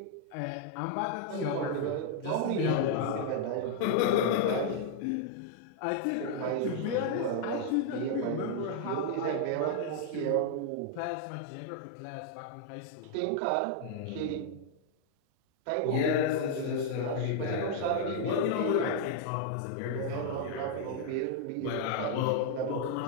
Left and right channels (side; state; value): both; different; correlation -0.01